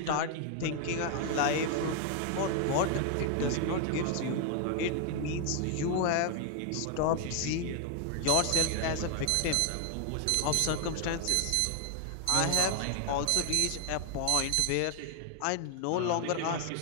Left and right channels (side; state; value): both; different; correlation 0.01